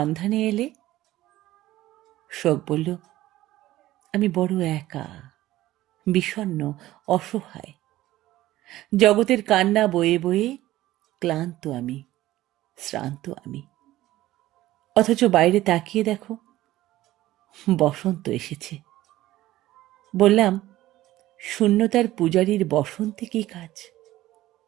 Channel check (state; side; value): quieter; left; 15.7 dB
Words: এলে? শোক বলল, আমি বড় একা, বিষণ্ণ, অসহায়। জগতের কান্না বয়ে বয়ে ক্লান্ত আমি, শ্রান্ত আমি। অথচ বাইরে তাকিয়ে দেখো, বসন্ত এসেছে। বললাম, শূন্যতার পূজারীর বসন্তে কি কাজ?